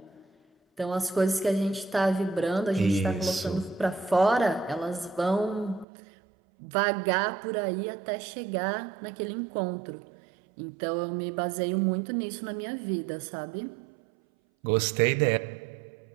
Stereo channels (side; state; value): left; drops out; at 5.9 s